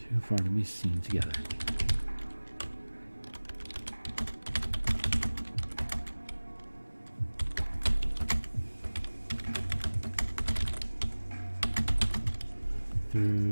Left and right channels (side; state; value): both; inverted; correlation -1.00